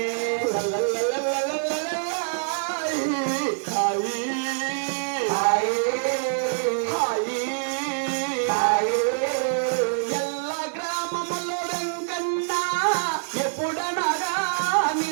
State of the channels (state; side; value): silent; left; digital silence